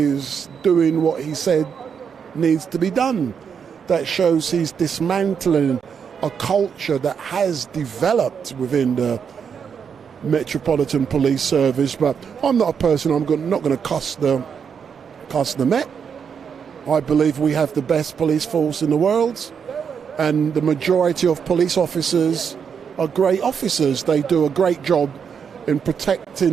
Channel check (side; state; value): left; quieter; 6.9 dB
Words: doing what he said needs to be done. That shows he's dismantling a culture that has developed within the Metropolitan Police Service. But I'm not a person, not going to cuss the Met. I believe we have the best police force in the world, and the majority of police officers are great officers. They do a great job in